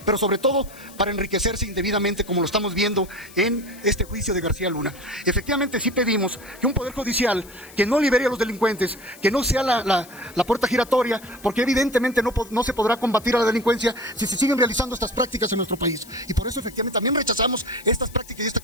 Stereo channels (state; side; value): noise; left; hiss, 21 dB below the sound